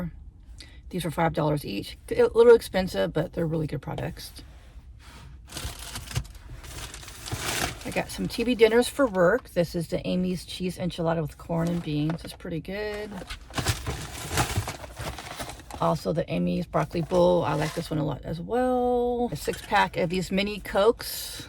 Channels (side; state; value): both; identical; correlation 1.00